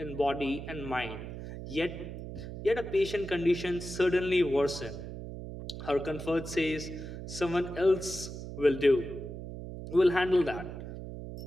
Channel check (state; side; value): noise; right; hum, 9 dB below the sound